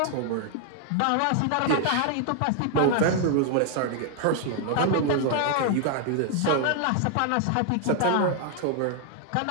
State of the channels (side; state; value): both; different; correlation 0.00